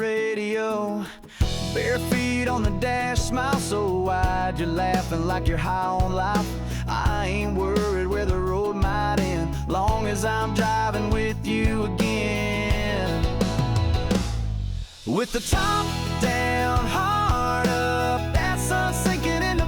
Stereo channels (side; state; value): both; identical; correlation 1.00